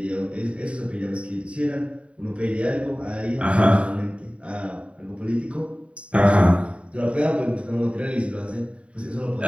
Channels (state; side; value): late; left; 0.062 ms